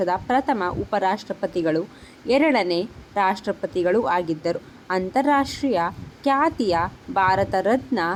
ಪ್ರಥಮ ಉಪರಾಷ್ಟ್ರಪತಿಗಳು, ಎರಡನೇ ರಾಷ್ಟ್ರಪತಿಗಳು ಆಗಿದ್ದರು. ಅಂತಾರಾಷ್ಟ್ರೀಯ ಖ್ಯಾತಿಯ ಭಾರತ ರತ್ನ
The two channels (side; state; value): both; identical; correlation 1.00